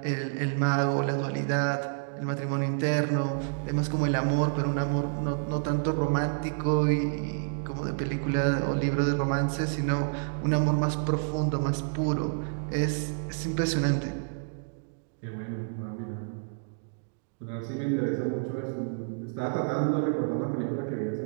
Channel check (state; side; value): silent; left; digital silence